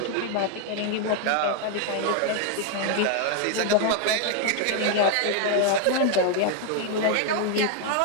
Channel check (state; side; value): different; both; correlation 0.00